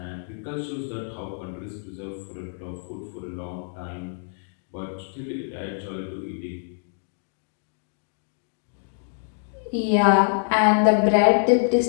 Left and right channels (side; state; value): right; silent; digital silence